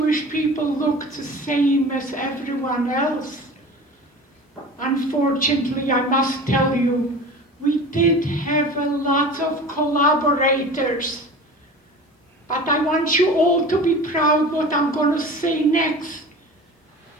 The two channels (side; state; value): both; normal; correlation 0.37